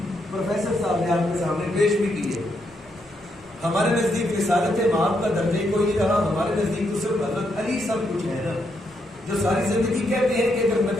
پروفیسر صاحب نے آپ کے سامنے پیش بھی کیے۔ ہمارے نزدیک رسالت مآب کا درجہ کوئی نہیں رہا، ہمارے نزدیک تو صرف حضرت علی سب کچھ ہے نا، جو ساری زندگی کہتے ہیں کہ اگر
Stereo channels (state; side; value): normal; both; correlation 0.79